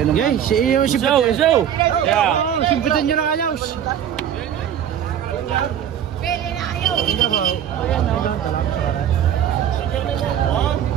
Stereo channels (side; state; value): left; quieter; 9.7 dB